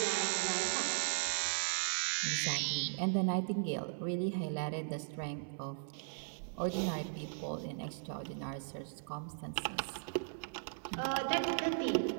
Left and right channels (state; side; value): silent; left; 53 dB below the other